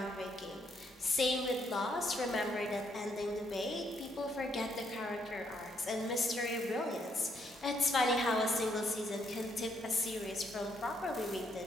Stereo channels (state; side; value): normal; both; correlation 0.73